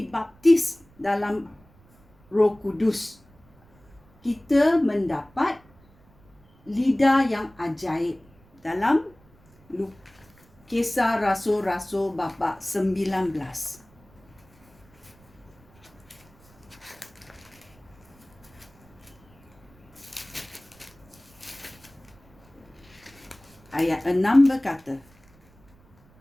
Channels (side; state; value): right; noise; rumble, 28 dB below the sound